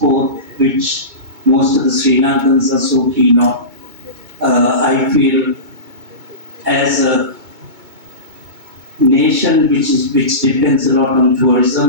which most of the Sri Lankans are so keen on, I feel as a nation which depends a lot on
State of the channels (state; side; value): late; left; 2.2 ms